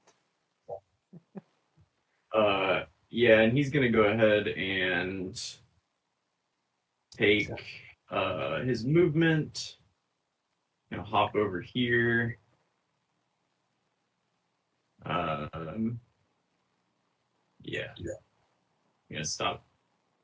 Yeah, and he's gonna go ahead and take his movement. Hop over here. Yeah. I'm gonna stop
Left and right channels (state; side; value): identical; both; correlation 1.00